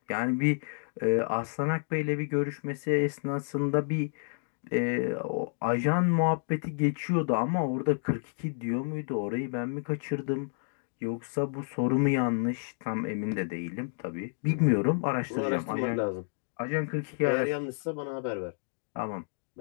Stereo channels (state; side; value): silent; right; digital silence